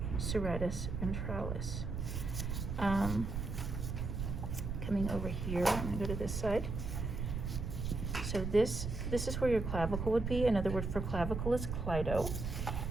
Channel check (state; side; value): noise; right; rumble, 3 dB below the sound